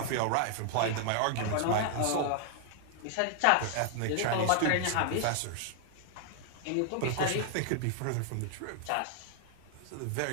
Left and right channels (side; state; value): both; different; correlation 0.00